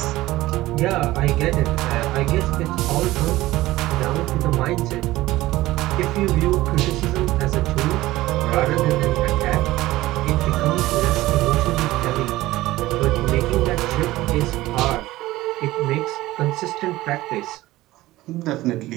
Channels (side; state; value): left; quieter; 17.3 dB